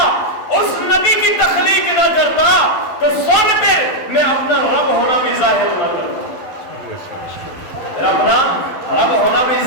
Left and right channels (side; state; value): right; late; 12 ms